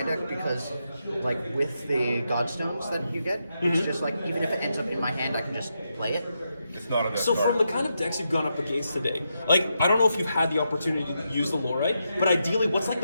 deck because, like, with the godstones that you get, it's just like, even if it ends up in my hand, I can just play it. It's not a deck So card. from the kind of decks you've gone up against today, like, I don't know if you've had the opportunity to use the Laurite, but ideally, what's like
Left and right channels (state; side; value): inverted; both; correlation -0.84